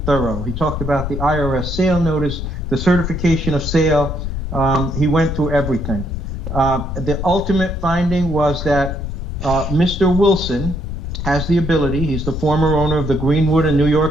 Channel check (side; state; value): left; noise; rumble, 5 dB below the sound